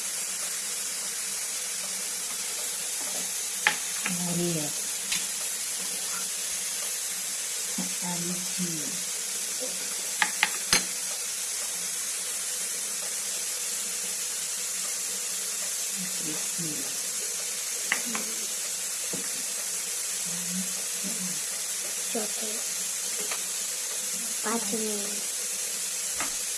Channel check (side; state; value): both; identical; correlation 1.00